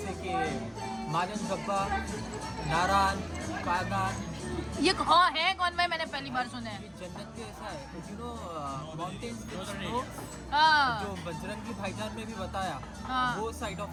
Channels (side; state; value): both; identical; correlation 1.00